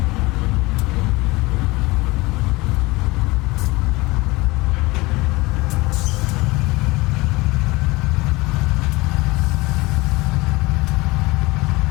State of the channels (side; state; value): right; quieter; 22.3 dB